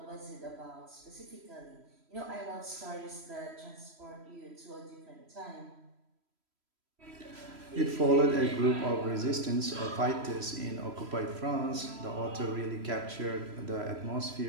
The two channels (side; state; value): left; late; 3.0 ms